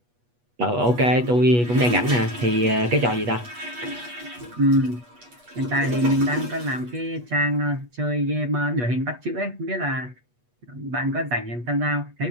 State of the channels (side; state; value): left; late; 8.3 ms